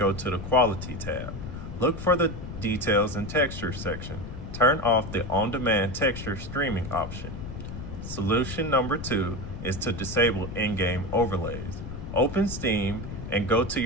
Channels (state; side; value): noise; left; rumble, 8 dB below the sound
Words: to the Quality tab. Look for the Details and Texture section. Turn off the on-demand texture streaming option. Solution number 2 is to disable in-game overlays. Open Steam and go to